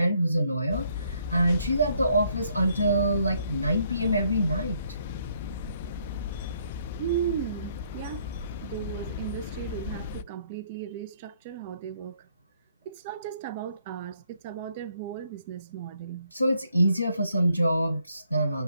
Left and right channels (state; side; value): inverted; both; correlation -0.68